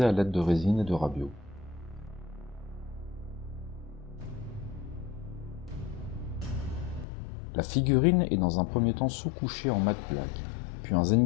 à l'aide de résine et de rabio. La figurine est dans un premier temps sous-couchée en matte black, puis un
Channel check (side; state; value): right; drops out; at 7.1 s